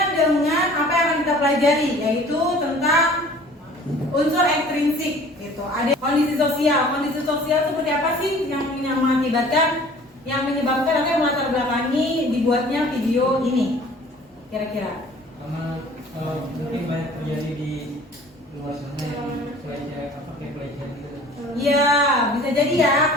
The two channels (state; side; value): normal; both; correlation 0.48